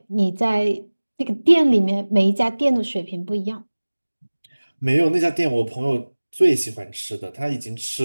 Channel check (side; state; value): both; inverted; correlation -1.00